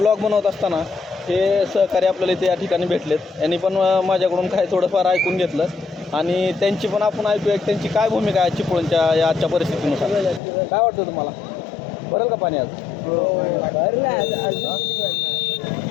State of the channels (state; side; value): drops out; right; at 10.4 s